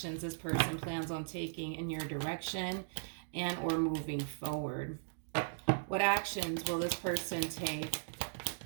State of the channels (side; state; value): left; silent; digital silence